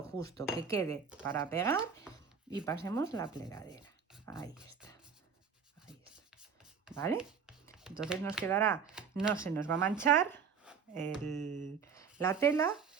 justo, que quede para pegar y pasemos la plegadera. Ahí está. Ahí está. ¿Vale? Entonces nos quedará, no se nos va a manchar la tela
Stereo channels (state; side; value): quieter; left; 6.3 dB